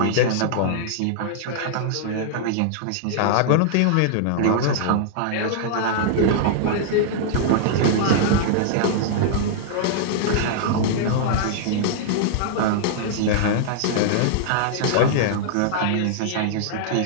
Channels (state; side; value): different; both; correlation -0.01